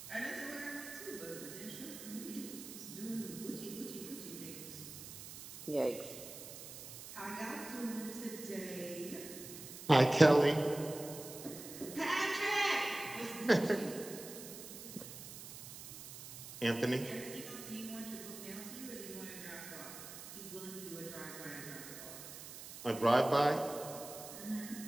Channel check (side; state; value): right; noise; hiss, 12 dB below the sound